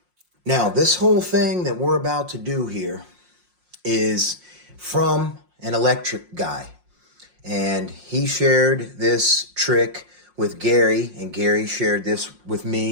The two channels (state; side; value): late; left; 5.6 ms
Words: Now, this whole thing that we're about to do here is from an electric guy. And he shared this trick with Gary, and Gary shared this with